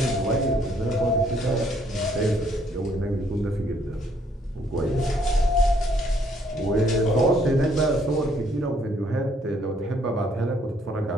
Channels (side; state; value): both; normal; correlation 0.66